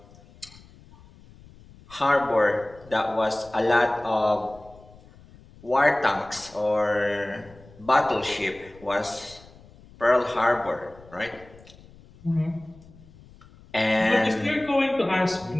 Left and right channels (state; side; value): noise; left; rumble, 23 dB below the sound